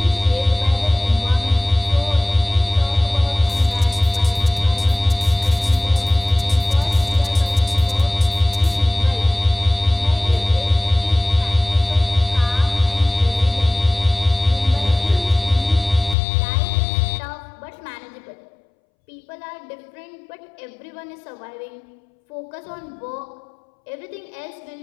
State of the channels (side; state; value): right; drops out; at 16.2 s